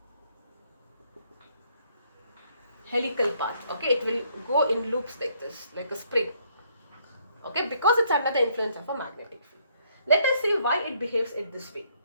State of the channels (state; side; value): inverted; both; correlation -0.68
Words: helical path. Okay, it will go in loops like this, like a spring. Okay, because it's under the influence of a magnetic field. Let us see why it behaves in this way.